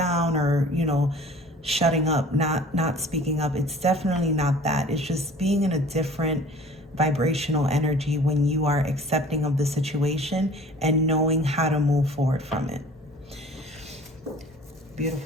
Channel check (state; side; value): normal; both; correlation 0.47